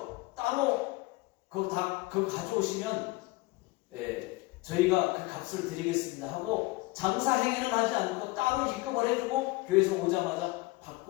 따로 그거 가져오시면 저희가 그 값을 드리겠습니다 하고 장사 행위는 하지 않고 따로 입금을 해주고 교회에서 오자마자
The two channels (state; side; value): quieter; right; 21.5 dB